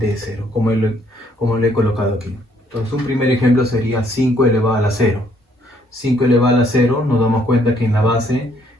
de 0, como lo he colocado aquí. Entonces, un primer ejemplo sería 5 elevado a la 0. 5 elevado a la 0, nos damos cuenta que en la base,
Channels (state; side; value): normal; both; correlation 0.67